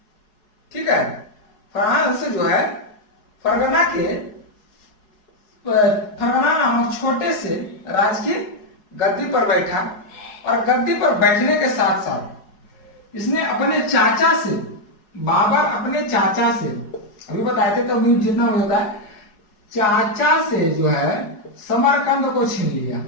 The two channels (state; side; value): late; right; 4.8 ms